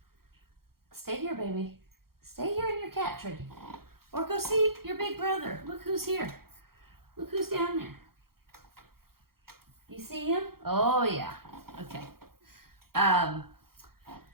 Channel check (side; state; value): left; late; 0.94 ms